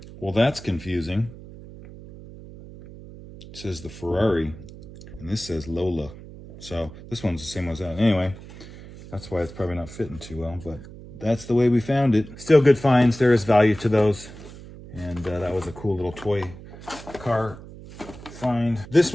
Well, that's confusing. It says the Ferrari, and this says Lola. So this one's the same as that. Anyway, that's why it's probably not fitting too well, but that's the way we found it. Still good finds. There is value to those. And that was a cool little toy car find. This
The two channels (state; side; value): noise; right; hum, 16 dB below the sound